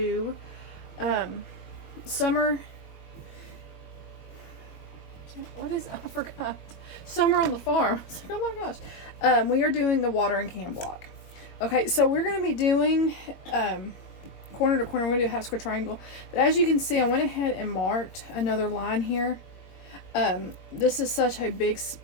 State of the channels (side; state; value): right; late; 21 ms